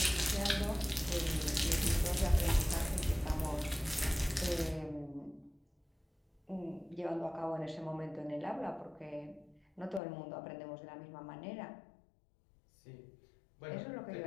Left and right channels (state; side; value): drops out; right; at 10.0 s